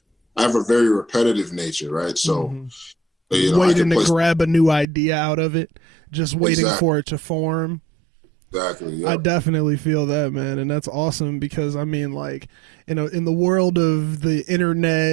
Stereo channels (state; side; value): drops out; left; at 4.9 s